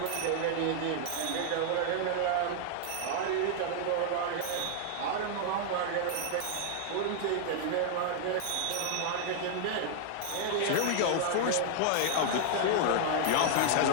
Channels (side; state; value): both; different; correlation 0.00